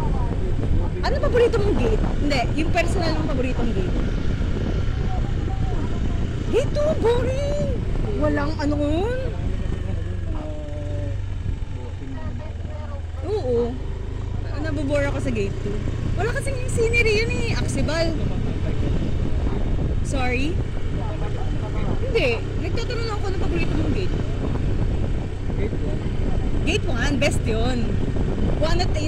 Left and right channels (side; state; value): both; identical; correlation 1.00